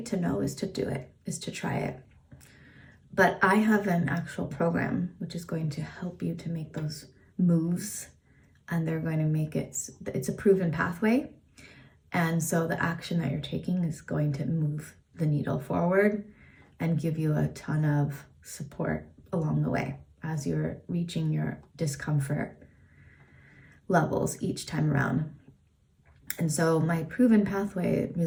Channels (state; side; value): identical; both; correlation 1.00